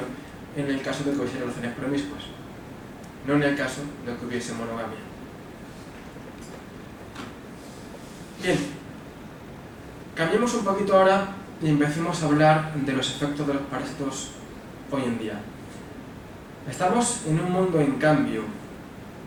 en el caso de que hubiese relaciones promiscuas, no en el caso de que hubiese monogamia. Bien, cambiemos un poquito ahora y empecemos a hablar de los efectos de los parásitos hoy en día. Estamos en un mundo en cambio.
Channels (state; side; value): identical; both; correlation 1.00